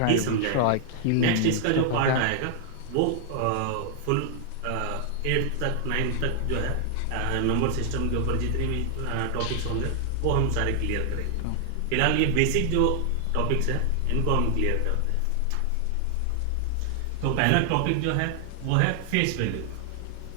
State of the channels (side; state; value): both; different; correlation 0.00